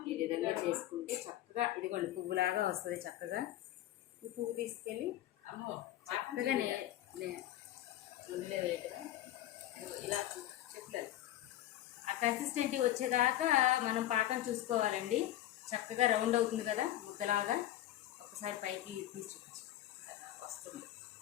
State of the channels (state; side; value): quieter; right; 13.7 dB